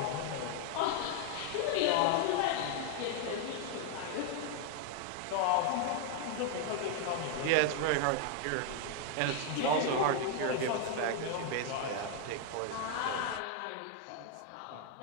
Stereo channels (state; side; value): different; both; correlation 0.01